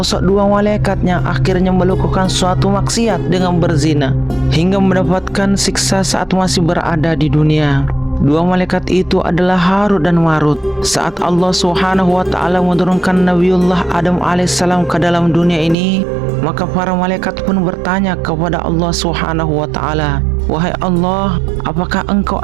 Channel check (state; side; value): drops out; left; at 15.8 s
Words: dua malaikat yang akhirnya melakukan suatu maksiat dengan berzina hingga mendapatkan siksa saat masih berada di dunia. Dua malaikat itu adalah Harut dan Marut. Saat Allah Subhanahu wa taala menurunkan Nabiullah Adam alaihissalam ke dalam dunia ini, maka para malaikat pun bertanya kepada Allah Subhanahu wa taala, "Wahai Allah, apakah Engkau